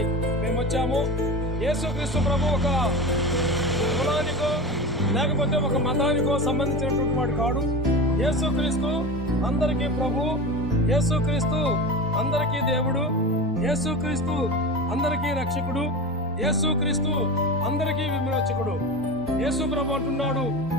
మేము వచ్చాము. యేసుక్రీస్తు ప్రభు ఒక కులానికో లేకపోతే ఒక మతానికో సంబంధించినటువంటి వాడు కాడు. యేసుక్రీస్తు అందరికీ ప్రభు, యేసుక్రీస్తు అందరికీ దేవుడు, యేసుక్రీస్తు అందరికీ రక్షకుడు, యేసుక్రీస్తు అందరికీ విమోచకుడు. యేసు ప్రభు అంటున్నాడు,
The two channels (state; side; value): normal; both; correlation 0.27